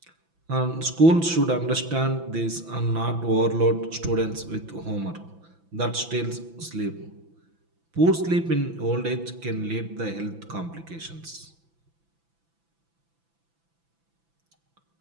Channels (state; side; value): late; left; 6.0 ms